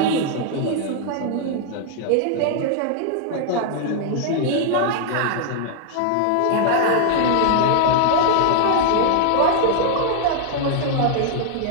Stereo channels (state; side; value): different; both; correlation 0.00